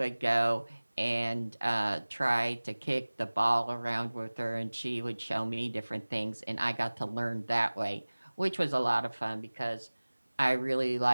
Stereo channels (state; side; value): inverted; both; correlation -1.00